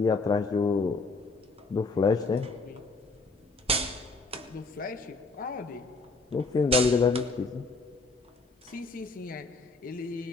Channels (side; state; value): right; quieter; 3.6 dB